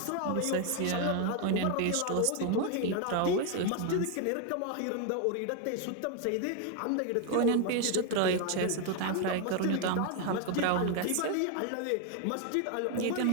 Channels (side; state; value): both; different; correlation 0.01